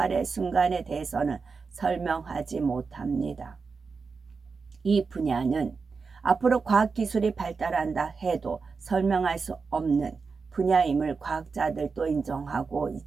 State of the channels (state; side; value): quieter; left; 4.9 dB